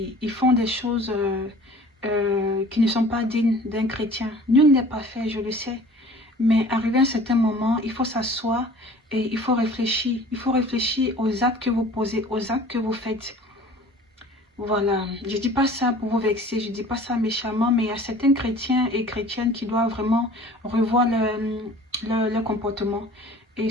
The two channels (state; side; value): normal; both; correlation 0.47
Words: font des choses qui ne sont pas dignes d'un chrétien. Nul n'est pas fait, je le sais. Mais arrivé à un certain moment, il faut s'asseoir et il faut réfléchir. Il faut réfléchir aux actes que vous posez, aux actes que vous faites. Voilà, je dis pas ça pour vous vexer, je dis pas ça méchamment, mais il y a certains chrétiens et chrétiennes qui doivent vraiment revoir leur comportement. Et